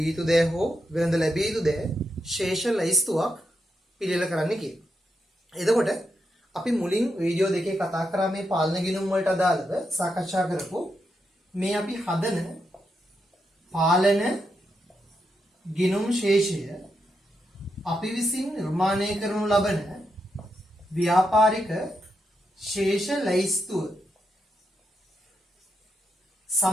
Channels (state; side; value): normal; both; correlation 0.84